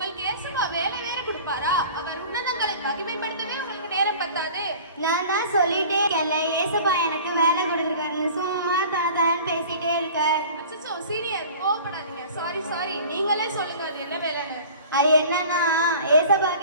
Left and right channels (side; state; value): both; inverted; correlation -0.43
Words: ஏசப்பா வேலை வேற கொடுப்பாரா? அவர் உன்னதங்களை மகிமைப்படுத்தவே உங்களுக்கு நேரம் பத்தாது. நான் தான் சொல்லிட்டே இருக்கேன்ல, ஏசப்பா எனக்கு வேலை கொடுத்துருக்காருன்னு சும்மா தான் பேசிட்டே இருக்க. அச்சச்சோ சீனியர் கோவப்படாதீங்க. சாரி நீங்களே சொல்லுங்க அது என்ன வேலைன்னு. அது என்னன்னா, ஏசப்பா